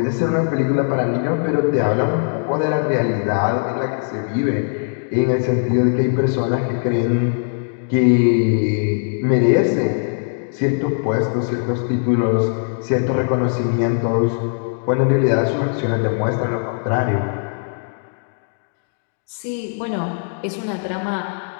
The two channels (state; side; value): silent; right; digital silence